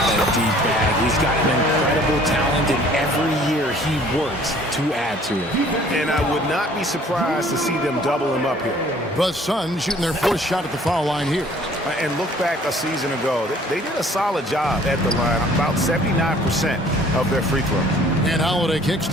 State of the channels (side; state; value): both; normal; correlation 0.55